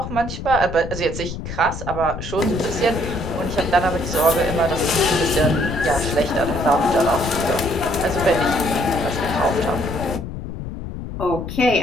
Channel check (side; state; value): left; noise; rumble, 8 dB below the sound